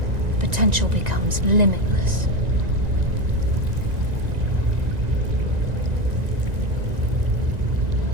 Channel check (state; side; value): late; left; 1.9 ms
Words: potential becomes limitless.